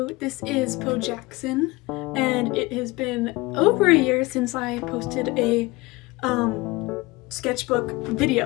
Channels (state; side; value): quieter; right; 22.2 dB